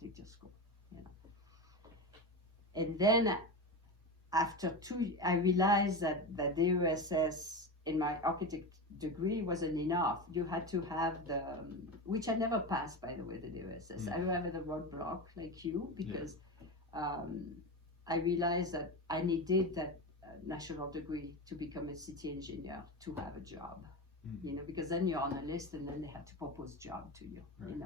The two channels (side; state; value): both; normal; correlation 0.21